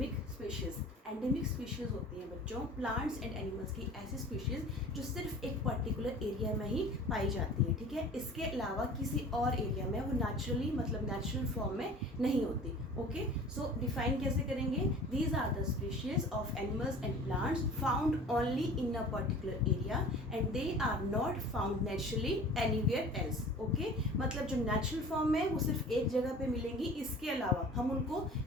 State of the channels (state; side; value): normal; both; correlation 0.43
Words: species. Endemic species होती हैं बच्चों प्लांट्स एंड एनिमल्स की ऐसी स्पीशीज जो सिर्फ एक पर्टिकुलर एरिया में ही पाई जाती है। ठीक है, इसके अलावा किसी और एरिया में वो नेचुरली नेचुरल फॉर्म में नहीं होती। ओके, सो डिफाइन कैसे करेंगे? These are the species of animals and plants found only in a particular area and they are not found naturally anywhere else. Okay, मतलब जो नेचुरल फॉर्म में वो सिर्फ एक जगह पे मिलेंगी, इसके अलावा हम उनको